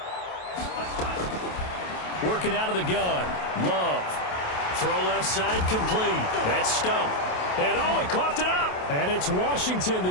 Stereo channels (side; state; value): right; late; 28 ms